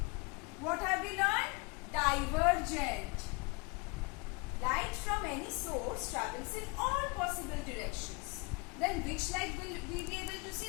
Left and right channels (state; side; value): quieter; right; 29.2 dB